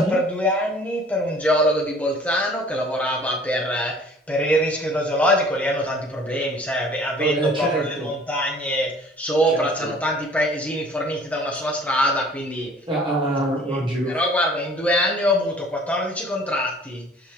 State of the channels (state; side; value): normal; both; correlation 0.51